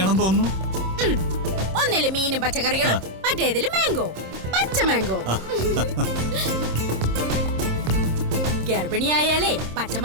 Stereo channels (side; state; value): left; late; 26 ms